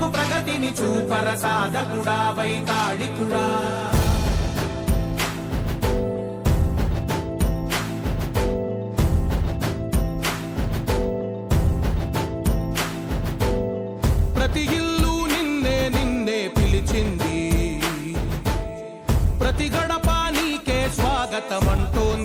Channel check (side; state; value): both; identical; correlation 1.00